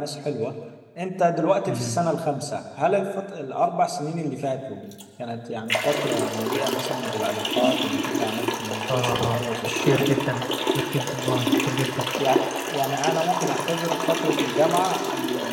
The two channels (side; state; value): both; identical; correlation 1.00